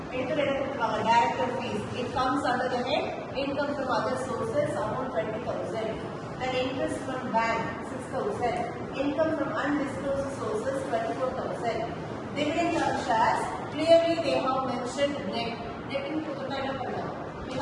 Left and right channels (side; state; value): both; identical; correlation 1.00